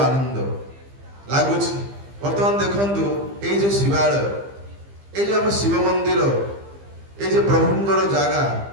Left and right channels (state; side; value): late; left; 15 ms